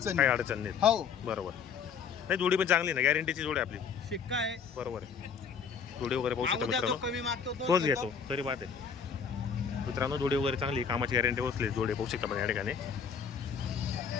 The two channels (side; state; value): right; quieter; 6.5 dB